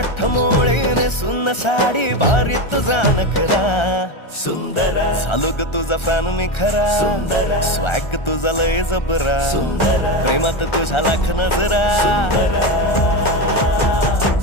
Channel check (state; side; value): late; right; 1.3 ms